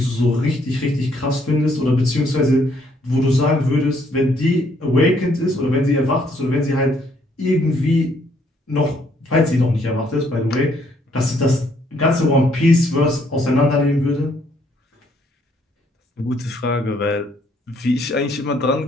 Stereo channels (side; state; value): both; normal; correlation 0.68